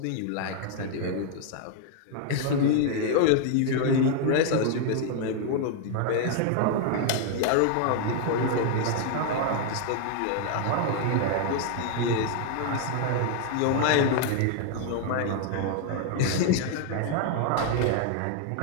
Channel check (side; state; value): both; different; correlation 0.00